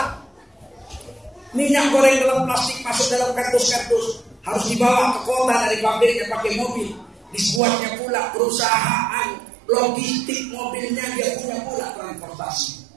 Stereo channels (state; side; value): drops out; left; at 7.6 s